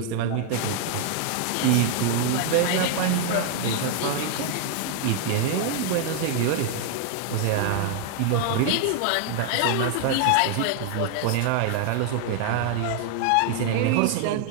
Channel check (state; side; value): different; both; correlation 0.00